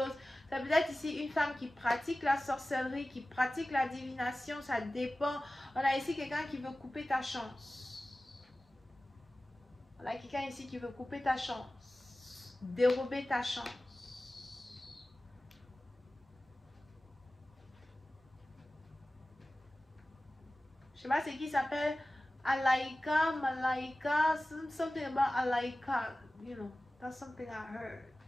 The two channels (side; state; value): both; normal; correlation 0.96